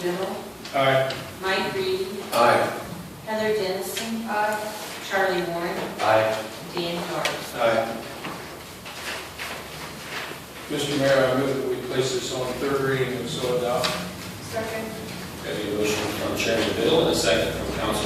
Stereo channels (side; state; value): both; identical; correlation 1.00